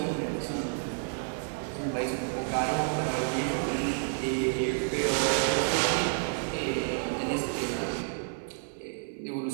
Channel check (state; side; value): silent; left; digital silence